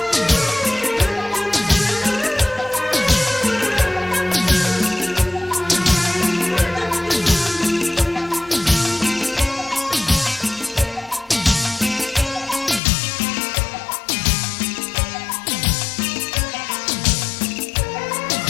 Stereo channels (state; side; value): drops out; right; at 12.8 s